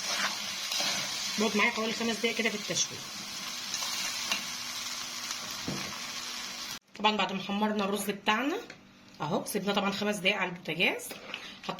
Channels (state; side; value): identical; both; correlation 1.00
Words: بقعد معايا حوالي 5 دقايق كده في التشويح. طبعا بعد ما حمرنا الرز بتاعنا اهو سيبنا طبعا 5 دقايق على البوتاجاز.